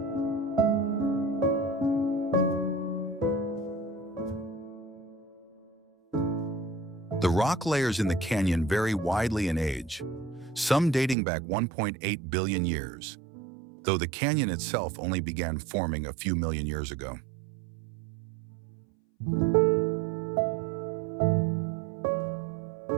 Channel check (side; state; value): left; drops out; at 11.2 s